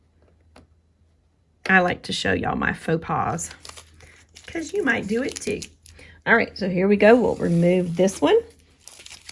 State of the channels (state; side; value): identical; both; correlation 1.00